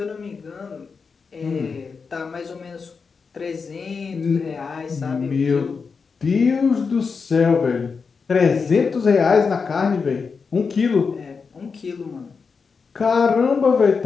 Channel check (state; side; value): quieter; right; 5.2 dB